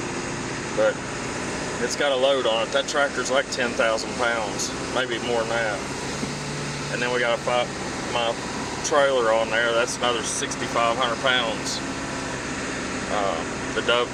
but it's got a load on it. That tractor's like 10,000 pounds, maybe more than that. And then we got my trailer on there. That's another 6,500 pounds. The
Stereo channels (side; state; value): both; identical; correlation 1.00